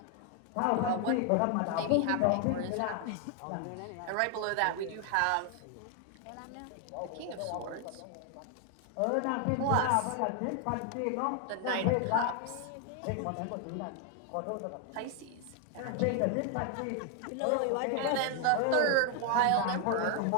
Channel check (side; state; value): both; different; correlation 0.00